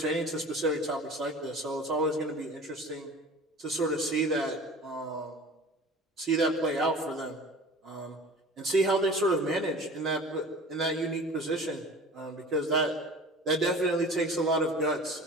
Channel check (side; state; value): both; normal; correlation 0.40